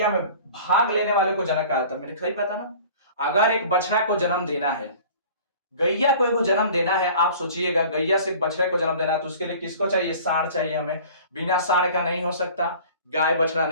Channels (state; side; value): inverted; both; correlation -0.45